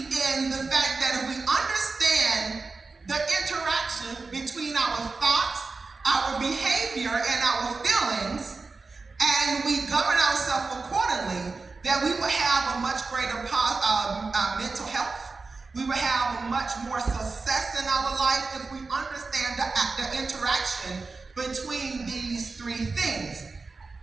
in the fact that if we understand the interaction between our thoughts, our behavior, and our feelings, and we govern ourselves accordingly, that we will have a much greater mental health. We will have much more success in our life if we understand the interaction between these three things.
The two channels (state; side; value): quieter; left; 4.0 dB